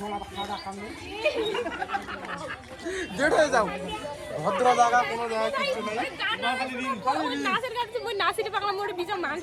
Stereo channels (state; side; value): identical; both; correlation 1.00